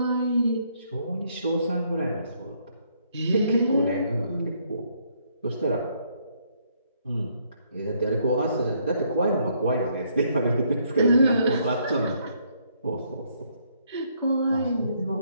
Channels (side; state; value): both; inverted; correlation -0.70